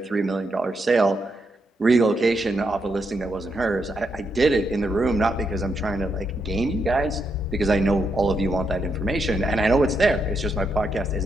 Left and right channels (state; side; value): normal; both; correlation 0.81